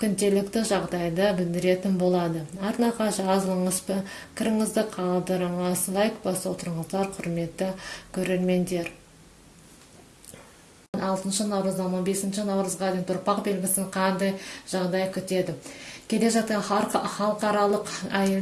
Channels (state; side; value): identical; both; correlation 1.00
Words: күнделікті жағдайды білдіретін болады. Арнаға жазылыңыз, пікіріңізді қалдырыңыз, лайк басып отырыңыздар, құрметті көрермендер. 6 наурыздан 15 наурызға дейін тұрпақ белгісін қандай жағдай күтеді. Келе жатқан халықаралық